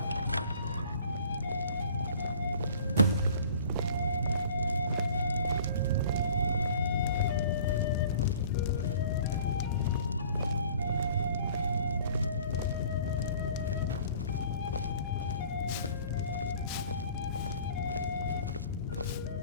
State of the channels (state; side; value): inverted; both; correlation -0.49